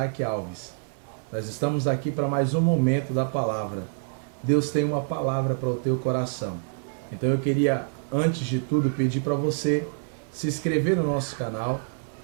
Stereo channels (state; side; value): silent; left; digital silence